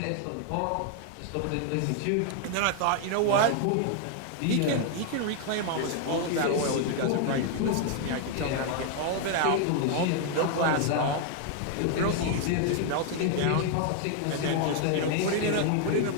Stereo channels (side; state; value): both; different; correlation 0.00